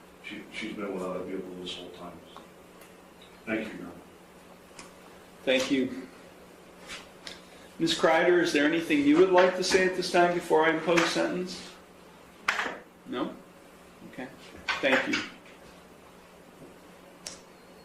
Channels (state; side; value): identical; both; correlation 1.00